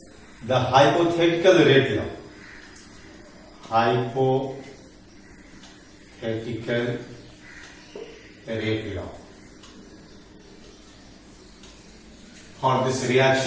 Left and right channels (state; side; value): identical; both; correlation 1.00